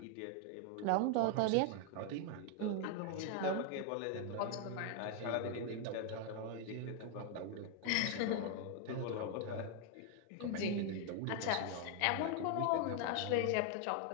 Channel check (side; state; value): both; different; correlation 0.01